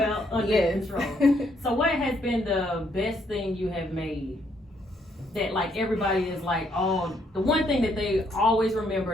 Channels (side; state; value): both; normal; correlation 0.71